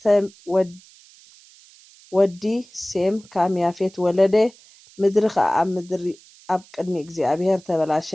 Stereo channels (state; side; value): noise; right; hiss, 25 dB below the sound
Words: ወዲ ሴም ካም ያፌት ወለደ ምድሪ ከዓ ኣብ ቅድሚ እግዚኣብሔር